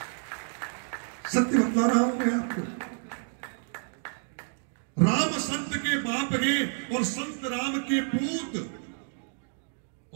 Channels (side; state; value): left; silent; 58 dB below the other